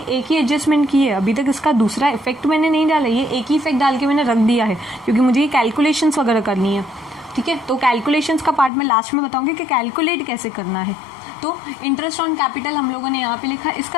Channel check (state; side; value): drops out; right; at 8.7 s